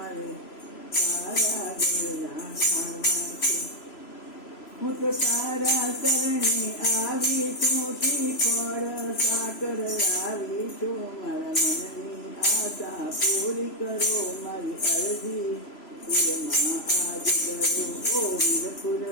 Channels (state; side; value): late; right; 3.0 ms